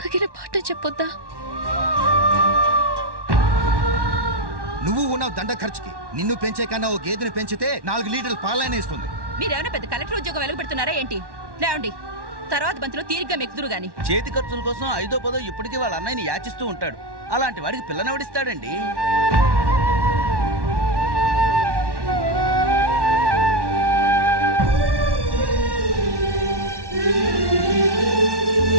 తగిన పాఠం చెప్పొద్దా? నువ్వు ఉన్నావు దండ ఖర్చుకి. నిన్ను పెంచే కన్నా ఓ గేదెని పెంచితే 4 లీటర్ల పాలైనా ఇస్తుంది. మీరేమైనా పెద్ద కలెక్టర్ ఉద్యోగం వెలగబెడుతున్నారా ఏంటి? లేవండి, తర్వాత బంతిలో తీరిగ్గా మెక్కుదురు గాని. చేతి ఖర్చుల కోసం 5ో 10ో ఇప్పటికీ వాళ్ళ అన్నయ్యని యాచిస్తూ ఉంటాడు. అలాంటి వాడికి పిల్లనెవడిస్తాడండి?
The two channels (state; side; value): late; left; 1.1 ms